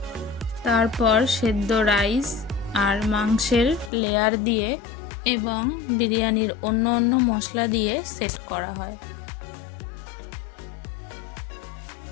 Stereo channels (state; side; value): drops out; right; at 3.9 s